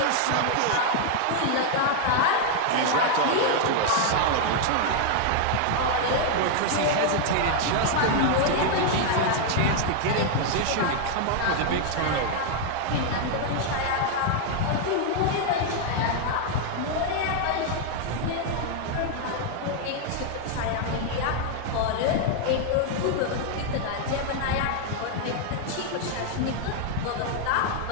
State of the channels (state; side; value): different; both; correlation 0.00